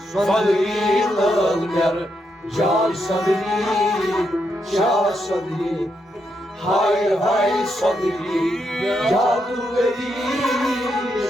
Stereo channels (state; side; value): normal; both; correlation 0.81